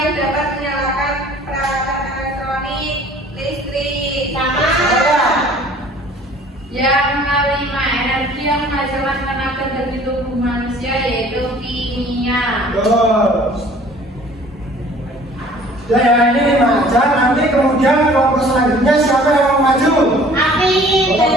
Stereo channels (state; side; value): normal; both; correlation 0.51